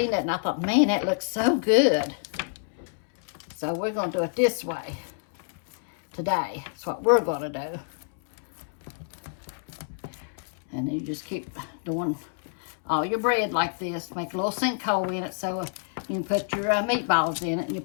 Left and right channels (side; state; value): right; silent; 60 dB below the other